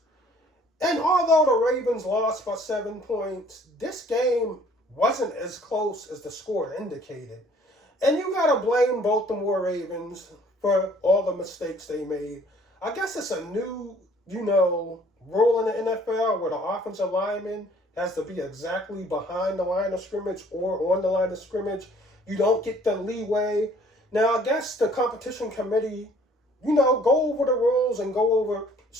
And although the Ravens lost by 7 points, this game wasn't as close as the score indicated. And you got to blame Baltimore Ravens for all the mistakes they made. I guess it's a new, rule in the NFL where the offensive lineman has to be exactly behind the line of scrimmage or on the line of scrimmage. You don't get the leeway. Now, I guess the competition committee, go over the rules and go over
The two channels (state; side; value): normal; both; correlation 0.57